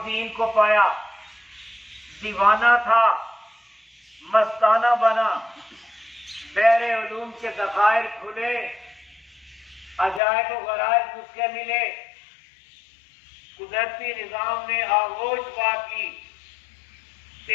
کو پایا، دیوانہ تھا، مستانہ بنا، بحر علوم کے ذخائر کھلے، عجائب و غرائب اس کے ملے، قدرتی نظام نے آغوش پا کی،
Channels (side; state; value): right; drops out; at 10.2 s